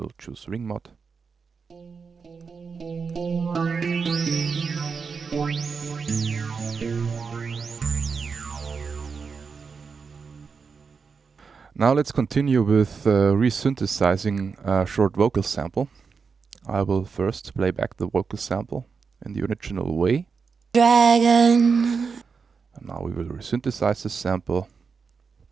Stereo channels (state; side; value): quieter; left; 5.4 dB